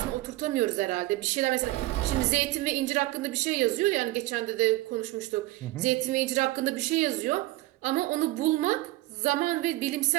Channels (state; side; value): quieter; left; 18.5 dB